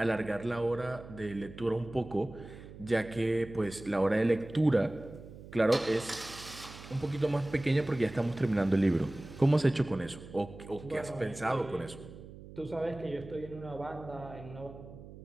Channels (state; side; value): noise; right; hum, 16 dB below the sound